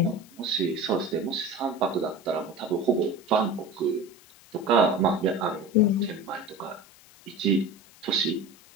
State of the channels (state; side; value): noise; left; hiss, 25 dB below the sound